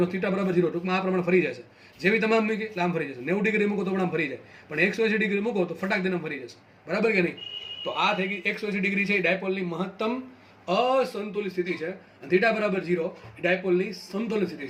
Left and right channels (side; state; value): both; identical; correlation 1.00